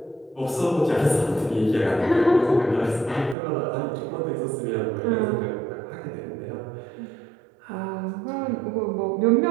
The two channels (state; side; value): drops out; left; at 3.4 s